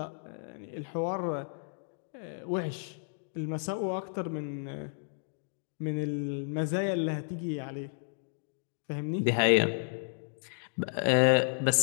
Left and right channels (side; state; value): right; silent; digital silence